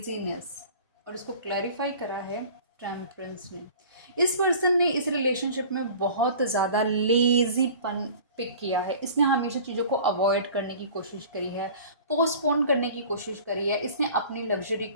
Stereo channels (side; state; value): both; inverted; correlation -0.43